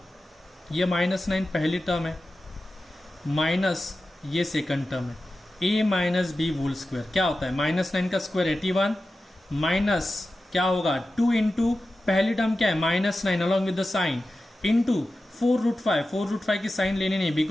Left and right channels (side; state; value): both; normal; correlation 0.93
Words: ये -9 पहली टर्म है माइनस ये सेकंड टर्म है, a minus B whole square क्या होता है -9 का स्क्वायर 81 माइनस क्या होगा 2 इंटू पहली टर्म क्या है -9 along with the sine into 4 √5. 4 √5 की साइन लेनी नहीं